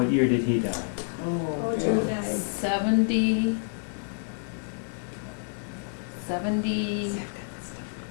year did he die? Oh, yeah. Joe died. 70.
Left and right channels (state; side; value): silent; right; 56 dB below the other